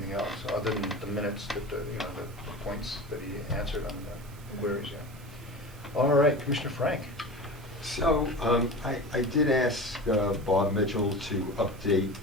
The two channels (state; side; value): normal; both; correlation 0.32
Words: else, other than the minutes that, the points that he answered on the queries, yeah. All right, Commissioner Frank. So, I did ask Bob Mitchell to update